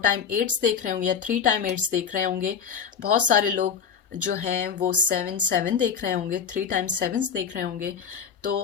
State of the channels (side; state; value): right; quieter; 7.0 dB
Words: टाइम 8s देख रहे होंगे या 3 टाइम 8s देख रहे होंगे। बहुत सारे लोग जो हैं वो 7 देख रहे होंगे, 3 टाइम 7s देख रहे होंगे। तो